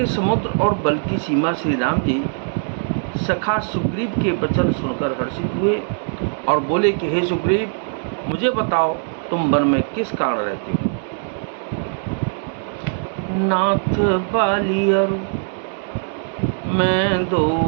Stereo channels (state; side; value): silent; left; digital silence